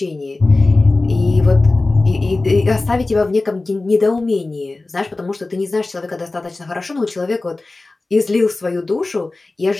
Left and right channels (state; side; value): quieter; right; 3.2 dB